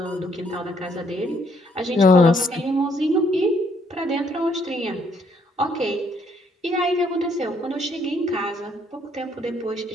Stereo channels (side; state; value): both; normal; correlation 0.69